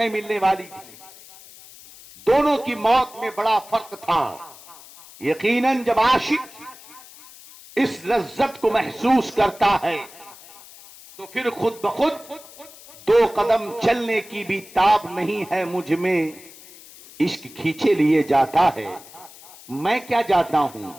ملنے والی تھی۔ دونوں کی موت میں بڑا فرق تھا۔ یقیناً جب عاشق اس لذت کو محسوس کرتا ہے تو پھر خود بخود دو قدم چلنے کی بھی تاب نہیں ہے مجھ میں، عشق کھینچے لیے جاتا ہے۔ میں کیا جاتا ہوں؟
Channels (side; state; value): left; noise; hiss, 20 dB below the sound